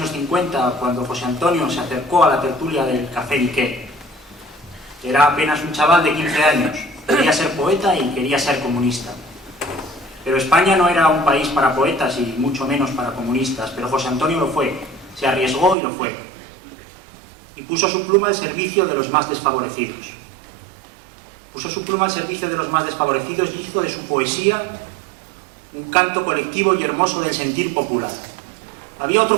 50 cuando José Antonio se acercó a la tertulia del Café Niqué. Era apenas un chaval de 15 años, quería ser poeta y quería ser comunista. Pero España no era un país para poetas y mucho menos para comunistas, pero José Antonio lo fue, se arriesgó y lo fue. Y puso su pluma al servicio de los más desfavorecidos. Puso su pluma al servicio de los más desfavorecidos y hizo de su poesía un canto colectivo y hermoso del sentir popular. Había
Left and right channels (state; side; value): drops out; left; at 15.8 s